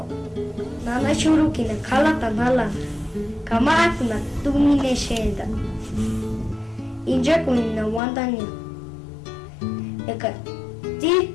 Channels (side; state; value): right; drops out; at 8.0 s